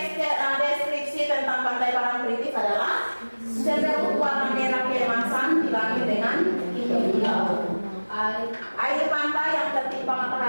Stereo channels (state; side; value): inverted; both; correlation -1.00